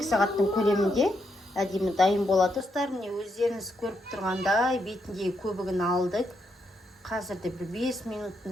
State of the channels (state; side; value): normal; both; correlation 0.80